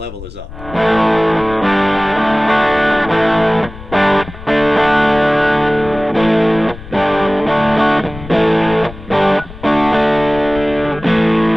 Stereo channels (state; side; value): noise; left; rumble, 15 dB below the sound